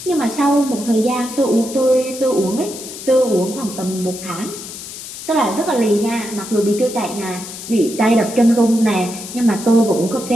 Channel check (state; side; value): noise; left; hiss, 11 dB below the sound